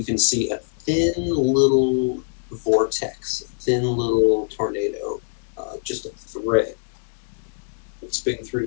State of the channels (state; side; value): silent; right; 63 dB below the other